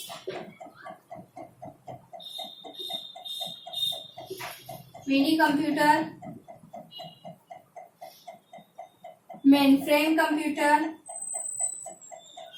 Mini computer, mainframe computer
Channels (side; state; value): both; identical; correlation 1.00